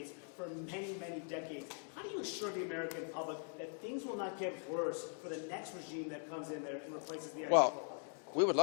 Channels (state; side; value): silent; right; 50 dB below the other